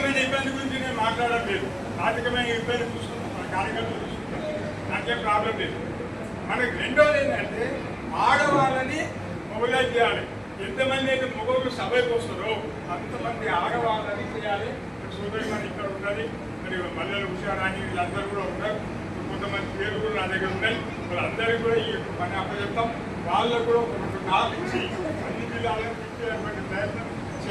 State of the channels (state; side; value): identical; both; correlation 1.00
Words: ఇబ్బంది గురించి నేను మాట్లాడడం లేదు. ఆర్థికమైన ఇబ్బంది చూసుకుంటాం, మన కార్యకర్తలు చూసుకుంటాం, నాకేం ప్రాబ్లం లేదు. మనకి రెండోది ఏంటంటే ఆడవాళ్ళని మొబైలైజ్ చేయాలి. ఎంతమంది అయితే మగవాళ్ళు సభకు వస్తారో అంతమంది ఆడవాళ్ళని చేయాలి. సోదరి మన ఇక్కడ ఉన్నది, మరి మల్లెలు హుషారాణి వీళ్ళందరూ కూడా ఉన్నారు. కొంతమంది పేరు కూడా నా దగ్గర ఉన్నాయి. వాళ్ళందరికీ కూడా ఈ పని అప్పచెప్తాం. వాళ్ళకు కూడా ఒక కాల్ ఇచ్చి అన్ని జిల్లాలను తిప్పేటువంటి ప్రయత్నం